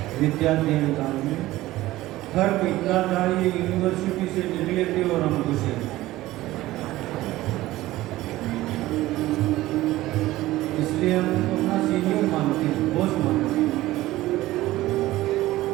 विद्याध्ययन काल में। फर्क इतना था, ये यूनिवर्सिटी से निकले थे और हम घुसे। इसलिए हम उनको अपना सीनियर मानते हैं, बॉस मानते हैं।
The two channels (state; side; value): quieter; left; 16.8 dB